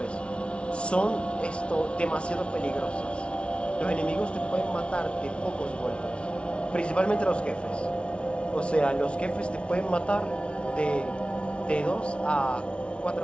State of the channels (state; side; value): late; right; 0.059 ms